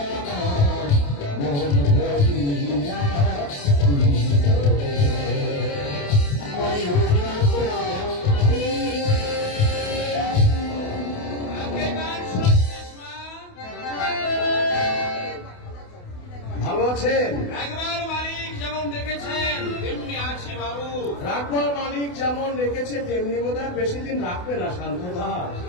আমার মন ভরিয়া দিল রে। ময়ূর পক্ষী আগে গান শুনছিস মা? ভালো আছেন? একবার মালিক যেমন দেখেছেন তেমনি আছি বাবু। রাখবার মালিক যেমন রেখেছে তেমনি বোধহয় বেশি দিন রাখবে না শান্ত দাস।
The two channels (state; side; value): late; right; 28 ms